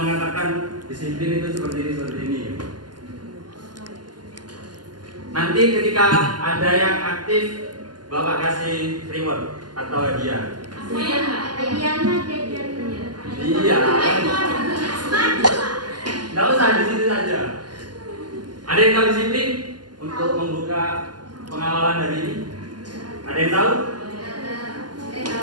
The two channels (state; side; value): late; left; 0.71 ms